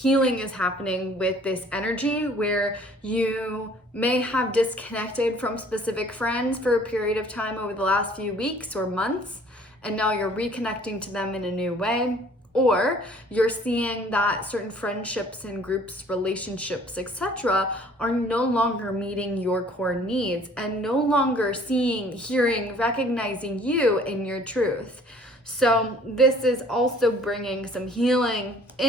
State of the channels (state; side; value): normal; both; correlation 0.55